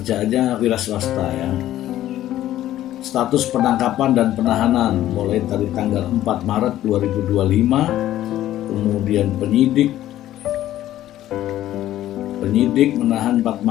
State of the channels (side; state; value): right; quieter; 13.3 dB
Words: wira swasta ya. Status penangkapan dan penahanan mulai dari tanggal 4 Maret 2025. Kemudian penyidik menahan 4